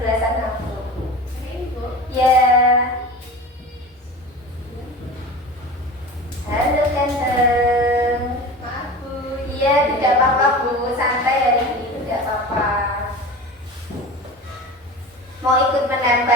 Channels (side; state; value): both; normal; correlation 0.33